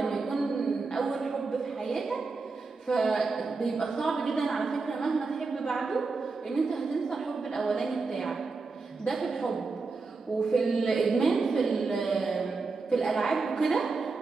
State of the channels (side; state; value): left; quieter; 4.2 dB